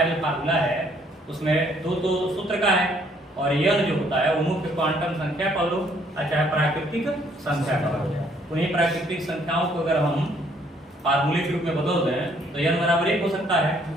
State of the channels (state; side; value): normal; both; correlation 0.65